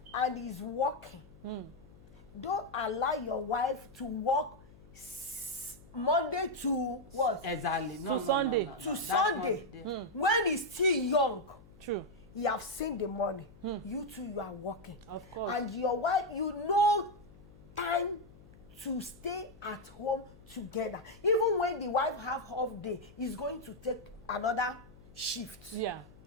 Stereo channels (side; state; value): left; noise; hum, 23 dB below the sound